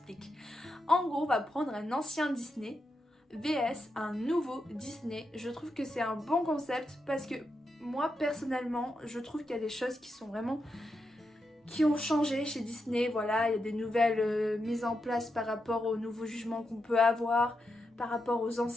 En gros, on va prendre un ancien Disney vs un nouveau Disney. Je trouve que c'est un bon concept parce que moi, personnellement, je trouve qu'il y a des choses qui ont changé chez Disney. Voilà, il y a des nouvelles mises en place par rapport aux nouveaux jugements qu'on peut avoir, par rapport aux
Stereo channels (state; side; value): normal; both; correlation 0.86